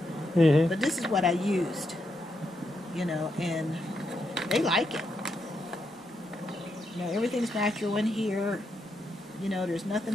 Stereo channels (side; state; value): both; normal; correlation 0.81